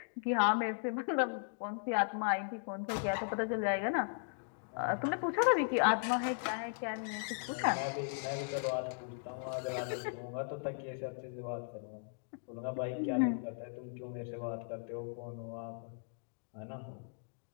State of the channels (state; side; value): silent; right; digital silence